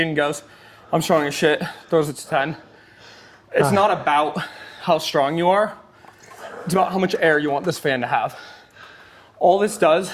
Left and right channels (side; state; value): both; identical; correlation 1.00